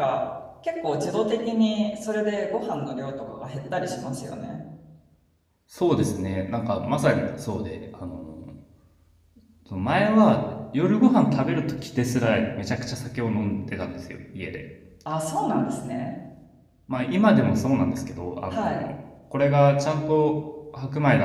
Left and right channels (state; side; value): identical; both; correlation 1.00